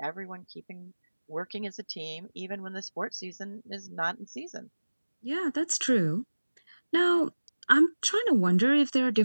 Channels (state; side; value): inverted; both; correlation -1.00